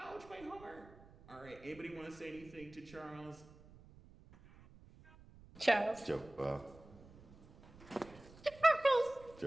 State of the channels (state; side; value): noise; right; rumble, 21 dB below the sound